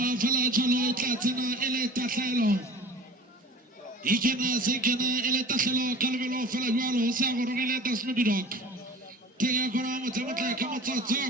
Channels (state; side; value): normal; both; correlation 0.41